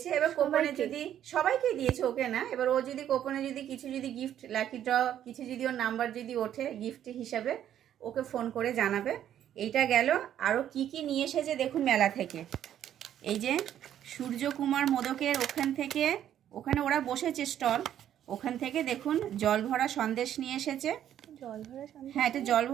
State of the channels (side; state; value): left; quieter; 10.7 dB